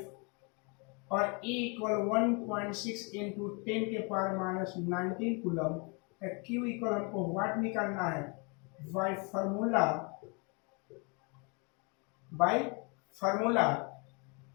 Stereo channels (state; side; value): quieter; right; 32.9 dB